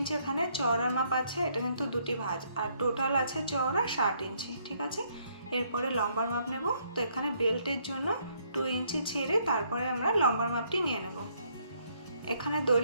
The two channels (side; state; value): both; inverted; correlation -0.69